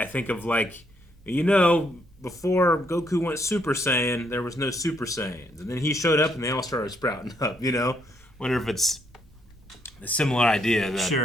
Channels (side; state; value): both; normal; correlation 0.73